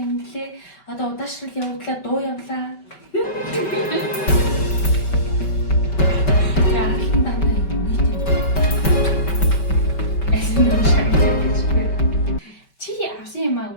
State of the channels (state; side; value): late; right; 5.2 ms